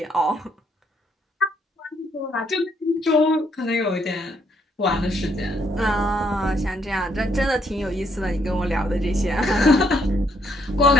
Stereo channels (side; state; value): both; normal; correlation 0.71